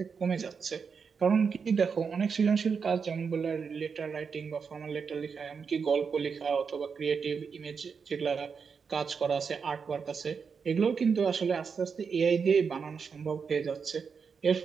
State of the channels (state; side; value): quieter; left; 5.8 dB